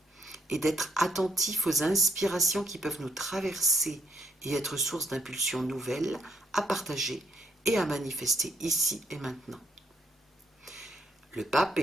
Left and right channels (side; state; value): both; normal; correlation 0.73